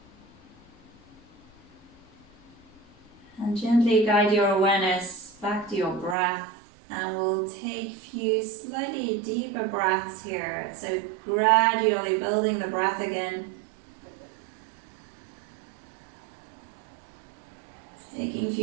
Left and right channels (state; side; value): drops out; left; at 6.2 s